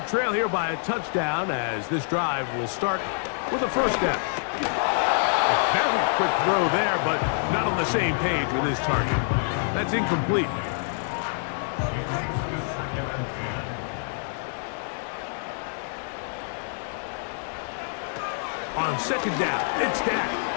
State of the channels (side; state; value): right; silent; digital silence